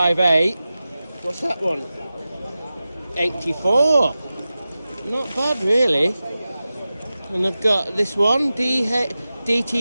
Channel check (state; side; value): inverted; both; correlation -0.95